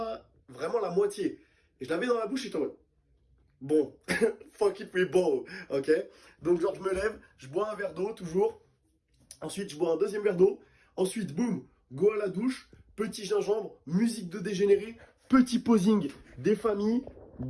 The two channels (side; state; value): both; identical; correlation 1.00